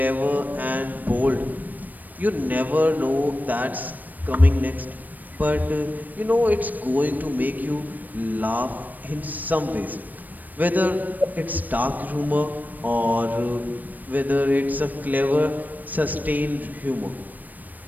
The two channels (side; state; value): left; late; 0.085 ms